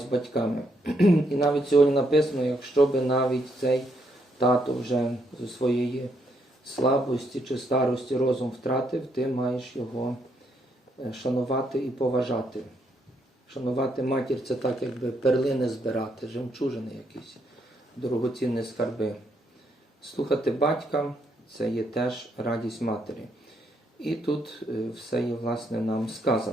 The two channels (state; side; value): normal; both; correlation 0.75